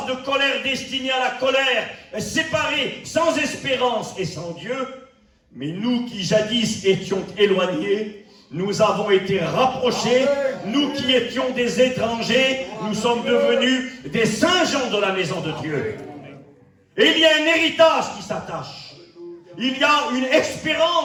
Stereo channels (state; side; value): identical; both; correlation 1.00